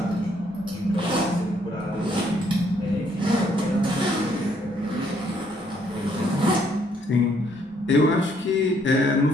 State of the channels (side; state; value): both; normal; correlation 0.69